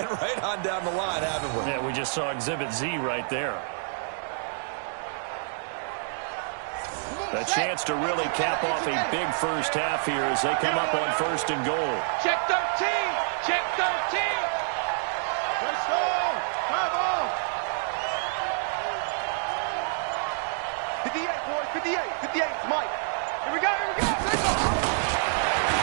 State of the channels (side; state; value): left; silent; digital silence